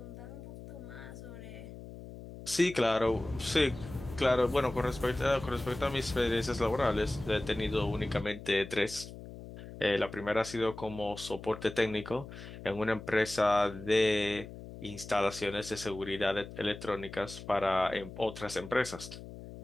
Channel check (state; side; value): noise; left; hum, 13 dB below the sound